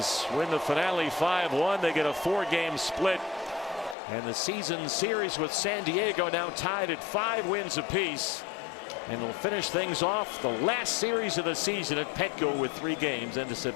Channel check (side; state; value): right; drops out; at 4.0 s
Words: win the finale 5-1. They get a 4-game split. And the season series with San Diego now tied at 5 wins apiece. And they'll finish things off the last series of the season at Petco with 3 games end of